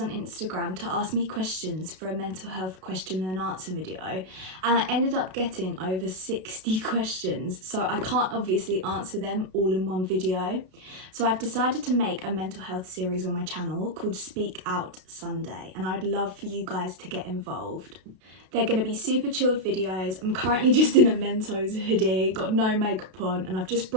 Instagram to ask me questions for a mental health question and answer video, and I ended up getting over 60 questions, so I can't obviously answer them all in one video. So I've decided to make a mental health series on my channel called Speak Out Sunday, and I'd love for you guys to get involved. They're going to be super chilled videos. I'm currently just in a Mentos hoodie, got no makeup on, and I've just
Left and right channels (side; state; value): left; late; 32 ms